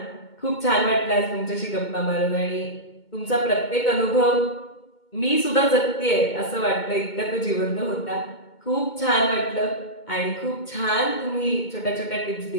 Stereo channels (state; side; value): late; right; 2.2 ms